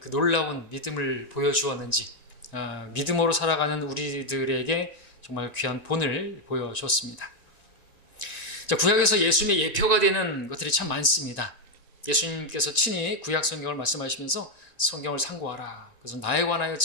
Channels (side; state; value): right; late; 1.9 ms